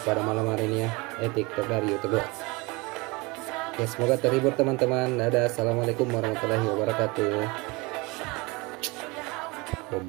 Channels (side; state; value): left; quieter; 25.6 dB